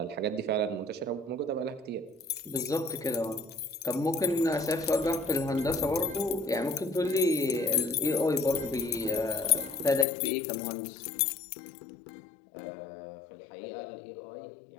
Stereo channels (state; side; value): drops out; right; at 10.1 s